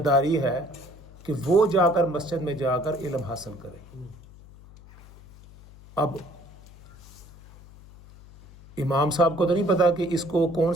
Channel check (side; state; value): left; noise; hum, 21 dB below the sound